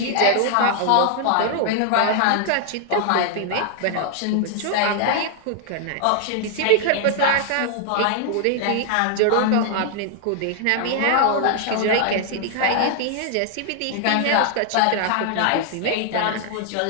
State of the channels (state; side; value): different; both; correlation 0.00